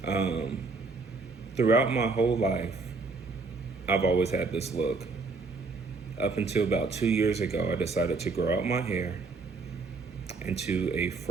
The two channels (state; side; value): quieter; left; 4.1 dB